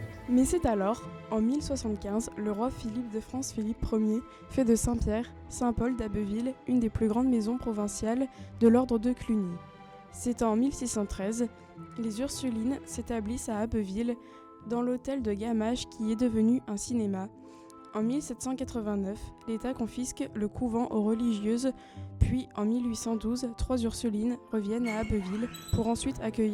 Mais c'est alors, en 1075, le roi Philippe de France Philippe Ier fait de Saint-Pierre, Saint-Paul d'Abbeville, une des plus grandes maisons provinciales de l'ordre de Cluny. C'est en 1613, les Ursulines s'établissent à Abbeville, dans l'hôtel de Gamache qui est devenu un cinéma. En 1789, l'État confisque le couvent aux religieuses, puis en 1812, 3 Ursulines reviennent à Abbeville pour ensuite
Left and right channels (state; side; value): identical; both; correlation 1.00